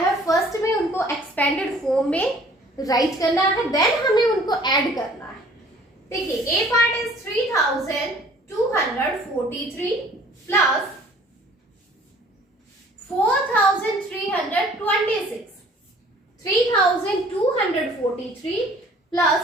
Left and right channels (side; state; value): both; normal; correlation 0.54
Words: है, फर्स्ट में उनको एक्सपेंडेड फॉर्म में राइट करना है, देन हमें उनको ऐड करना है। देखिए ए पार्ट इज 3243 प्लस 4326, 3243 प्लस